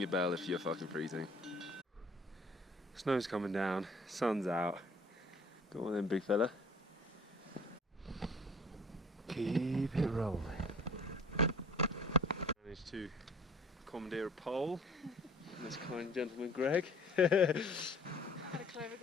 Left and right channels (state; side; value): normal; both; correlation 0.52